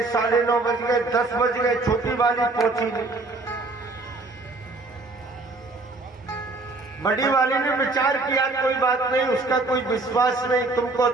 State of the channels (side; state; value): left; quieter; 3.3 dB